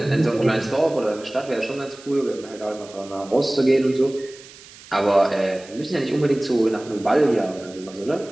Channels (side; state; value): right; noise; hiss, 20 dB below the sound